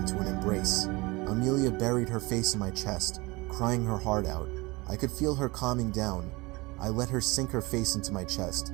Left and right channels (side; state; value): left; quieter; 23.9 dB